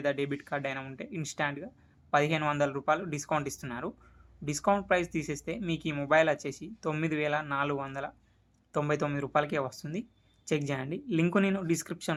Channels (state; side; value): identical; both; correlation 1.00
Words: డెబిట్ కార్డ్ అయినా ఉంటే ఇన్స్టాంట్గా 1,500 రూపాయలు డిస్కౌంట్ ఇస్తున్నారు. డిస్కౌంట్ ప్రైస్ తీసేస్తే మీకు ఈ మొబైల్ వచ్చేసి 9,499 రూపాయలకే వస్తుంది. చెక్ చేయండి. లింక్ నేను